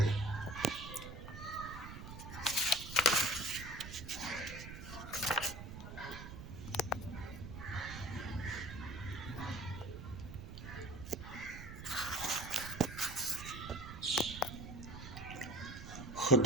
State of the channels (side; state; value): right; noise; rumble, 10 dB below the sound